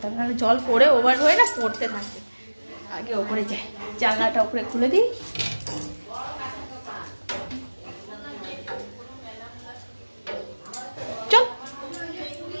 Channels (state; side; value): inverted; both; correlation -1.00